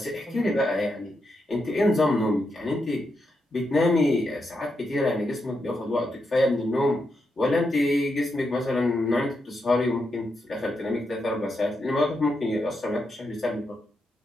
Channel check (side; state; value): both; normal; correlation 0.84